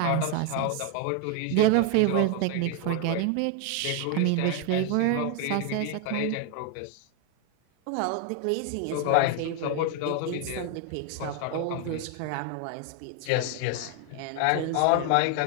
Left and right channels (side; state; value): both; different; correlation 0.01